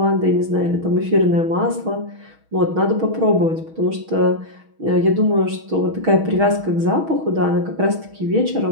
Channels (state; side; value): late; left; 6.3 ms